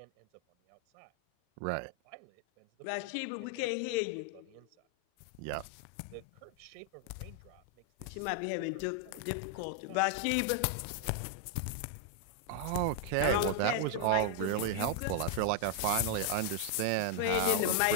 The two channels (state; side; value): different; both; correlation 0.00